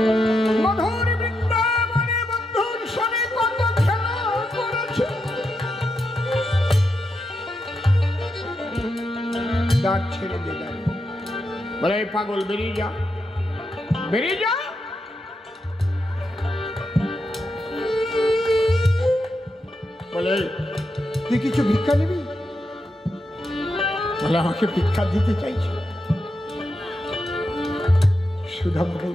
মধুর বৃন্দাবনে বন্ধুর সঙ্গে কত খেলা করেছে। দাঁত ছেড়ে দিলাম। বলে পাগল, বেরিয়ে যা, বেরিয়ে যা। বলে তুই কিছু ভিক্ষা নিবি? বলে আমাকে ভিক্ষা দিতে চাইছি। সুদামা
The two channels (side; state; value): both; normal; correlation 0.85